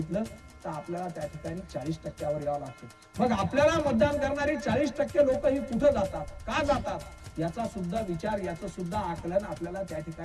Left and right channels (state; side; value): identical; both; correlation 1.00